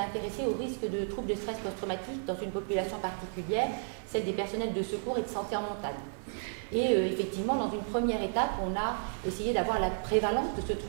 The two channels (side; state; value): left; silent; 56 dB below the other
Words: au risque de troubles de stress post-traumatique dans une population particulière, celle des personnels de secours et de santé en montagne. Et effectivement, dans une première étape, on a essayé d'avoir la prévalence de ce